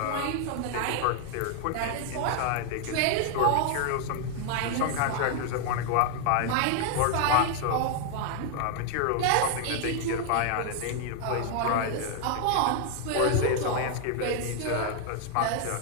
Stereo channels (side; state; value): both; different; correlation 0.00